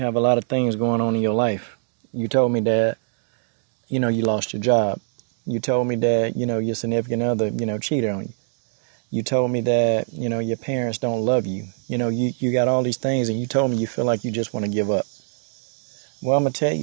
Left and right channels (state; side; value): silent; left; digital silence